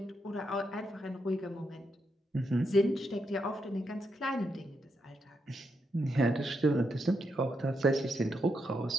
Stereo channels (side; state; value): both; normal; correlation 0.82